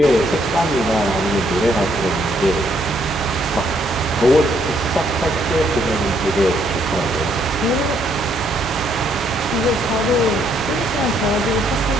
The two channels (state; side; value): normal; both; correlation 0.70